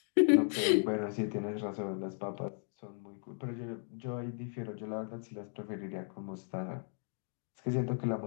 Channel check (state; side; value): silent; right; 54 dB below the other